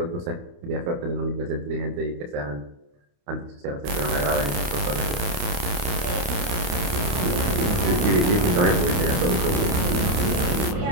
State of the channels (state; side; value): late; left; 28 ms